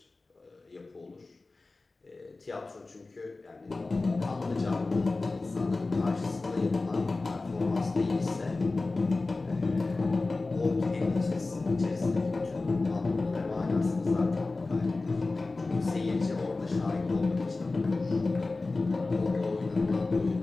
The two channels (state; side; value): quieter; right; 3.5 dB